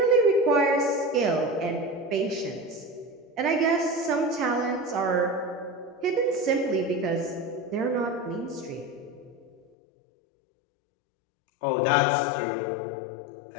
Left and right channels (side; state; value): right; drops out; at 9.6 s